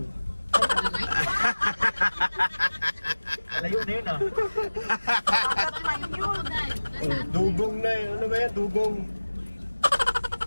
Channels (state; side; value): inverted; both; correlation -1.00